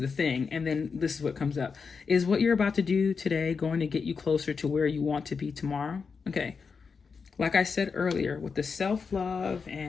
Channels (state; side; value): quieter; right; 5.3 dB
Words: thing. And then this is what comes up. Is what you're about to do today going to get you closer to where you want to be tomorrow? Okay. Like I said earlier, with the self-love